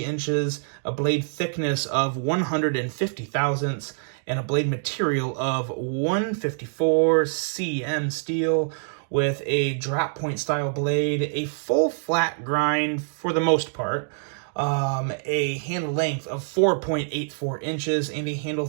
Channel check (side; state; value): left; silent; digital silence